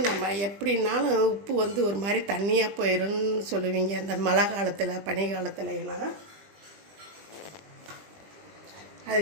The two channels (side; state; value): left; late; 20 ms